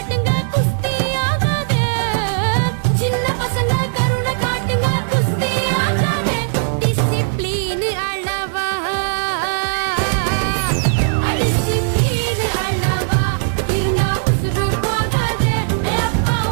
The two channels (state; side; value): silent; left; 67 dB below the other